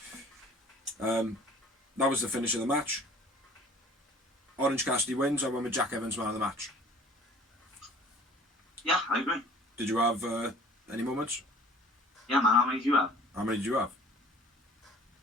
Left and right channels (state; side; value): normal; both; correlation 0.50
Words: That was the finish of the match. Orange Cassidy wins. I went with Jack Evans man of the match. Yeah, I agree. Did you have any moments? Yeah, man. How many did you have? How many did you have?